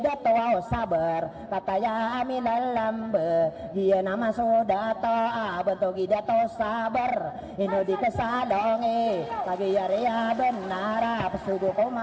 sabar kataya amilalambe dia nama sodato bentogi dato sabar ino di kesalonge kagiya benara pesudu ko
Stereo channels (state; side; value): identical; both; correlation 1.00